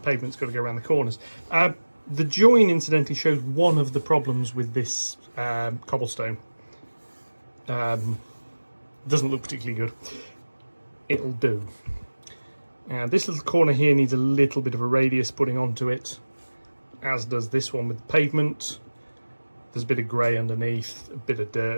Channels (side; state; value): both; inverted; correlation -1.00